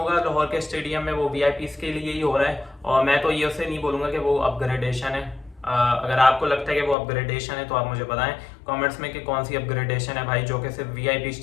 लाहौर के स्टेडियम में, वो वीआईपीज के लिए ही हो रहा है और मैं तो ये उसे नहीं बोलूँगा कि वो अपग्रेडेशन है। अगर आपको लगता है कि वो अपग्रेडेशन है तो आप मुझे बताएं कमेंट्स में कि कौन सी अपग्रेडेशन है भाई, जो कि सिर्फ वीआईपी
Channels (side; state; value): right; drops out; at 7.0 s